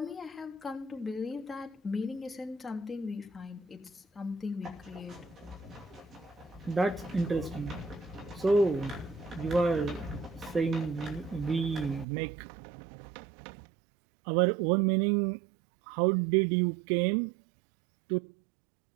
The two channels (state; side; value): drops out; left; at 12.1 s